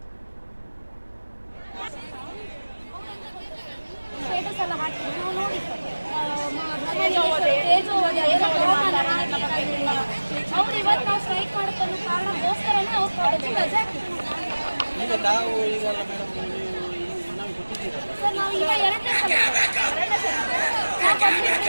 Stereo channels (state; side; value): inverted; both; correlation -1.00